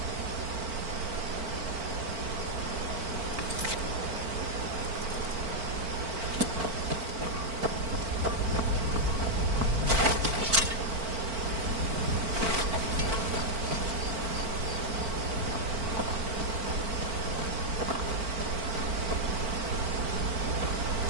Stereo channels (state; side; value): late; left; 4.5 ms